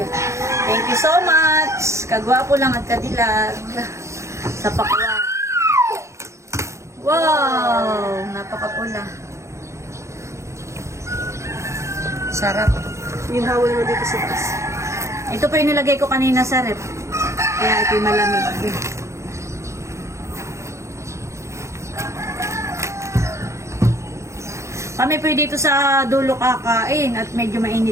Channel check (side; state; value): left; late; 0.14 ms